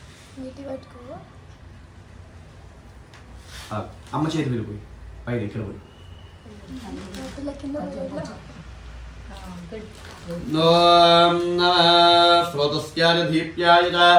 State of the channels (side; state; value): both; identical; correlation 1.00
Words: నీటి పట్టుకో. అమ్మ చేతి వెళ్ళిపోయి పై దగ్గర పోయి స్రోతస్యాయ దీప్యాయ చ